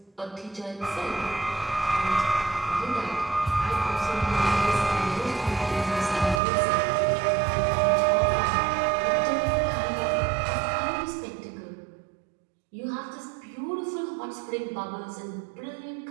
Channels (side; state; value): left; drops out; at 6.4 s